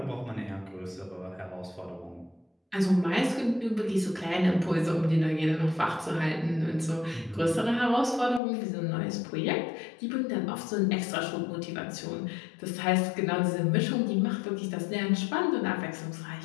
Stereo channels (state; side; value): drops out; right; at 8.4 s